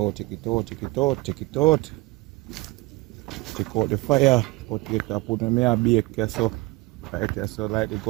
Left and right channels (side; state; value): left; quieter; 22.2 dB